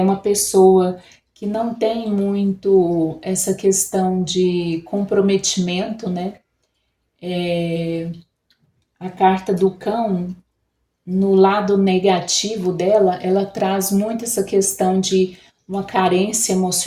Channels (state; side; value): identical; both; correlation 1.00